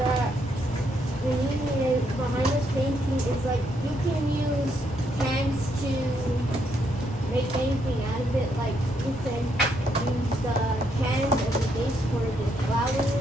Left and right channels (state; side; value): normal; both; correlation 0.75